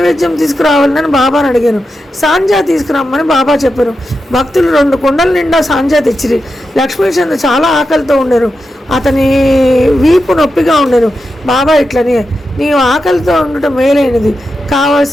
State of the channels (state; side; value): normal; both; correlation 0.89